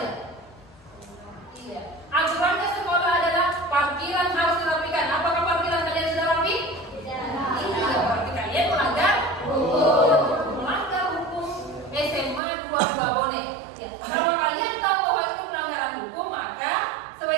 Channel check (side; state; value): left; drops out; at 12.4 s